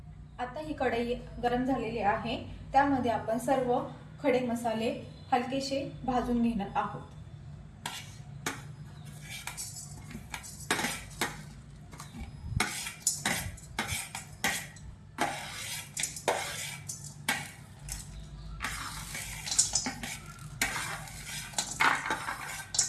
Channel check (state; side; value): identical; both; correlation 1.00